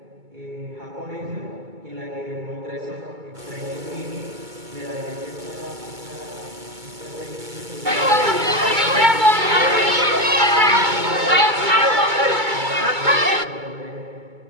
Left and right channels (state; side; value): late; left; 2.2 ms